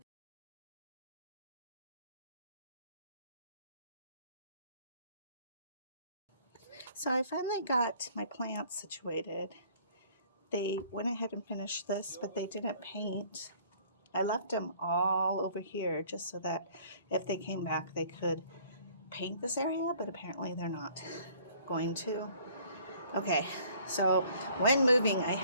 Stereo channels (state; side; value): inverted; both; correlation -0.56